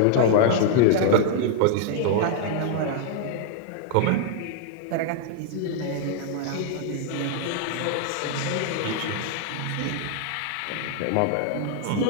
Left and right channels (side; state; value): both; different; correlation 0.00